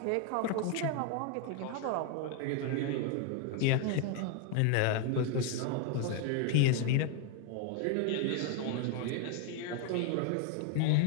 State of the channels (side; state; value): both; different; correlation 0.01